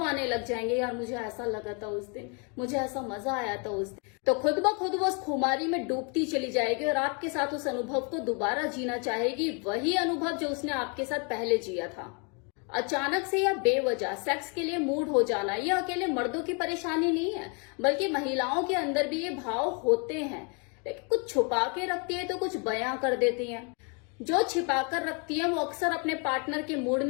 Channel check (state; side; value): quieter; right; 35.3 dB